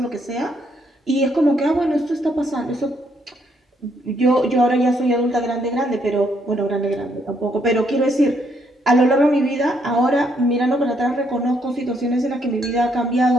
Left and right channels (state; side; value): normal; both; correlation 0.72